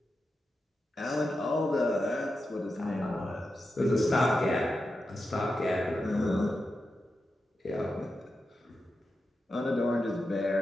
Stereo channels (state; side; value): normal; both; correlation 0.89